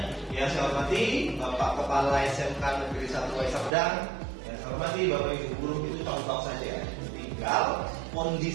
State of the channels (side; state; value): left; drops out; at 3.7 s